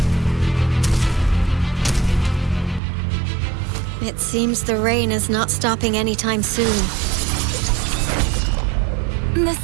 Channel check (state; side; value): drops out; left; at 2.8 s